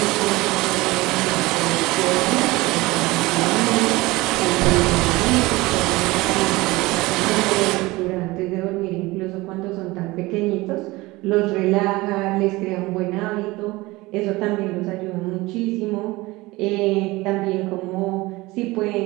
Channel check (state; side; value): quieter; left; 21.0 dB